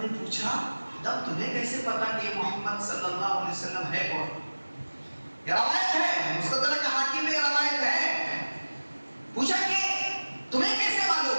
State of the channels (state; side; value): inverted; both; correlation -1.00